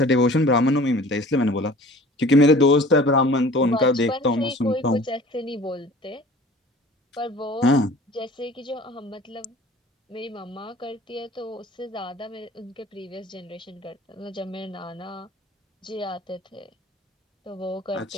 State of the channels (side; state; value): both; normal; correlation 0.46